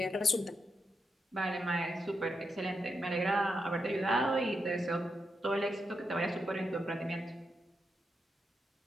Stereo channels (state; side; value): normal; both; correlation 0.85